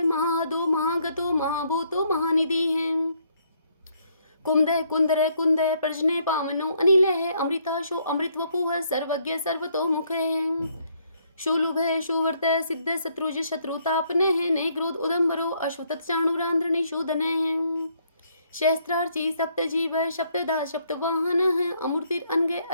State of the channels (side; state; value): both; inverted; correlation -0.70